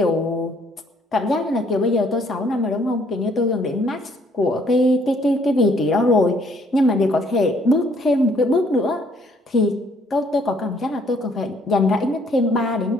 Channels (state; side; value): normal; both; correlation 0.64